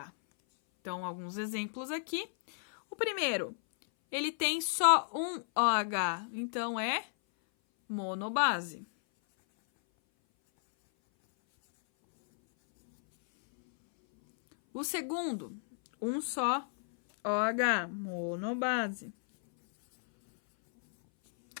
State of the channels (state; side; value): silent; right; 56 dB below the other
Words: Então, alguns exemplos aqui. O primeiro, ele tem só um OH, então é monobase. O segundo, um só OH, monobase.